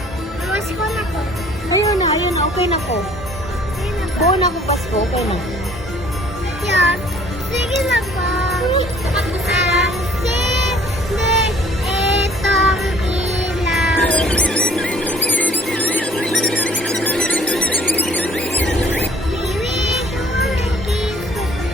Awas ko na ko. Ayun na, okay na ko. Sige na ba? Buo na ko Pasko, okay na. Yan. Sige na ba? Ang sinde itong ilaw. Bibig ko ng kiss ko.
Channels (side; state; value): both; normal; correlation 0.56